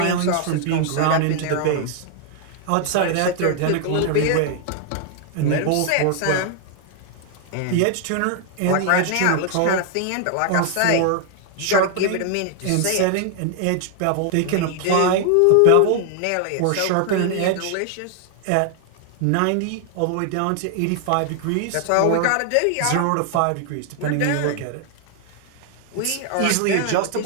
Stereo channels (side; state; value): both; different; correlation 0.00